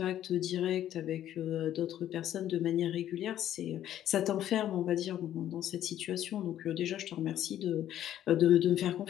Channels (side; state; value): right; quieter; 11.7 dB